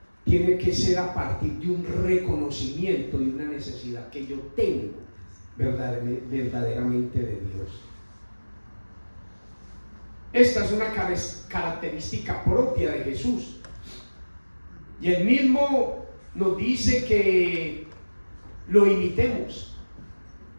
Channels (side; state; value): both; inverted; correlation -1.00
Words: tiene que ser a partir de un reconocimiento de una necesidad que yo tengo verdaderamente de Dios. Esta es una característica propia de Jesús. Y Él mismo nos dice que lo imitemos.